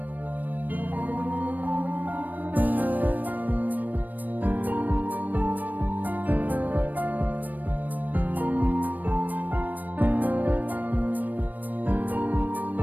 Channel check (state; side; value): late; left; 0.085 ms